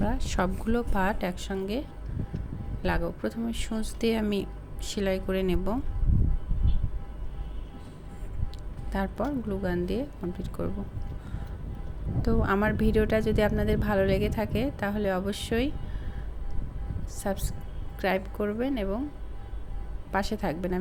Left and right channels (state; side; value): identical; both; correlation 1.00